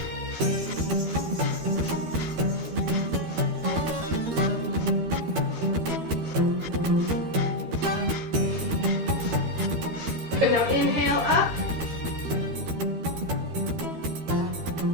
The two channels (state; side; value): late; left; 12 ms